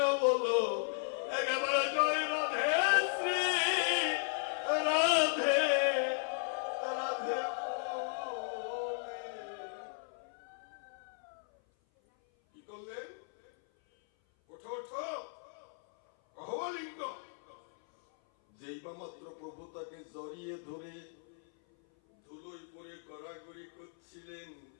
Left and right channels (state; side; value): silent; right; 54 dB below the other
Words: বলো, একেবারে জয় রাধে শ্রী রাধে রাধে। কি করলেন? ওঠো ওঠো, কহলিঙ্গ। যেই বা মাত্র প্রভু তাকে জড়িয়ে ধরে ধুলোয় পরে গড়াগড়ি করছিলেন,